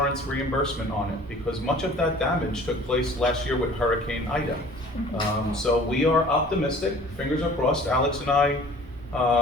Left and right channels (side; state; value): both; normal; correlation 0.48